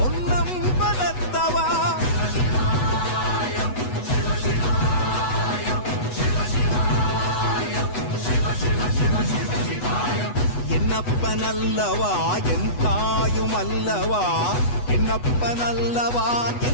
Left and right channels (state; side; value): late; right; 8.1 ms